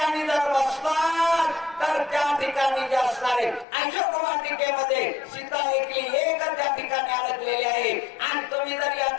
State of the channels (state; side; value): drops out; right; at 3.7 s